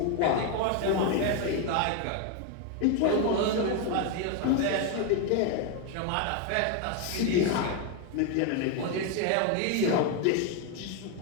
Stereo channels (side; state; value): both; different; correlation 0.01